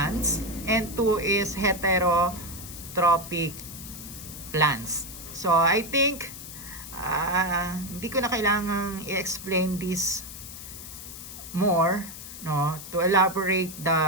and two is heterotrophic plants. So, I think hindi ko na kailangang i-explain this more, no, to elaborate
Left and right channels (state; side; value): noise; left; hiss, 12 dB below the sound